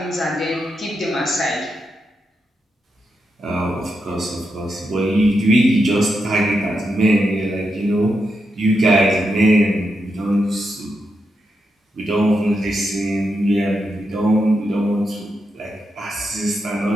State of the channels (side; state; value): both; normal; correlation 0.85